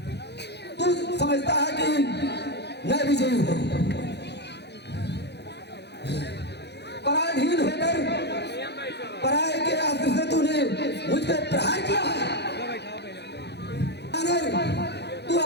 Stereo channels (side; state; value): right; late; 0.49 ms